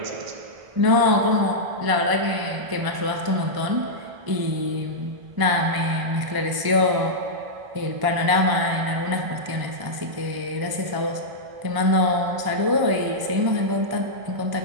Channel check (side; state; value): left; late; 1.0 ms